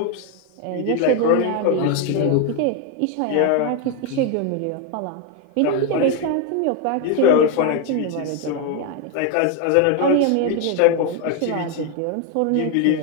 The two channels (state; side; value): different; both; correlation 0.01